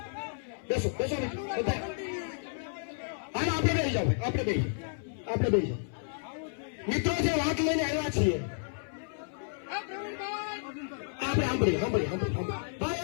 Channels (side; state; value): right; silent; 56 dB below the other